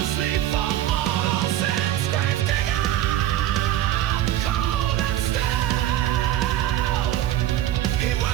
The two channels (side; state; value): left; quieter; 12.9 dB